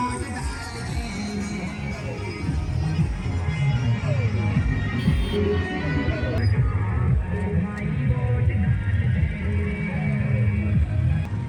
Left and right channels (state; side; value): identical; both; correlation 1.00